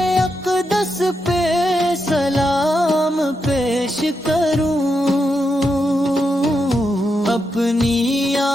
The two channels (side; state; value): both; normal; correlation 0.84